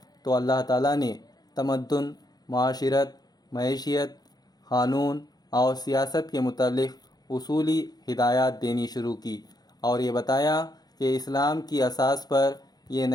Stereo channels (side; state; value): right; late; 0.19 ms